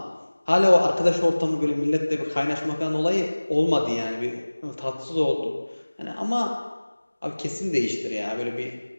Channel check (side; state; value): both; inverted; correlation -1.00